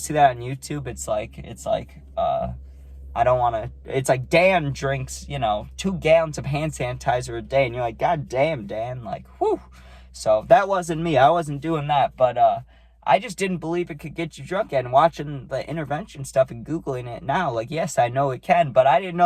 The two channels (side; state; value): both; identical; correlation 1.00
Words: that on YouTube? It's like, I don't want to, it's like Dan drinks, 2 gallons of hand sanitizer a day. And you're like, God damn, Dan, like, whew. So that wasn't me. I wasn't doing that. But I just didn't believe it could get you drunk. And watching the intervention stuff and Googling it now, like, yes, I know it can. But I didn't